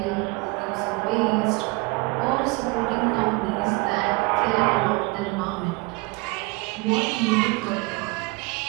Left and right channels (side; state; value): left; quieter; 25.9 dB